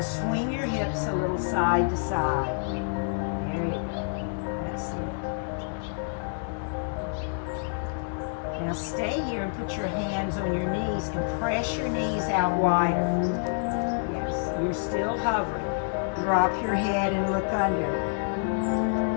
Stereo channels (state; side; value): silent; right; digital silence